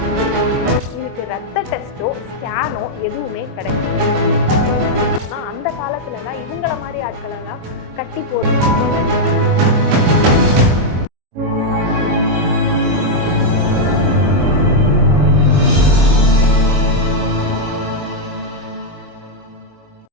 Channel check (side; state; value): left; late; 23 ms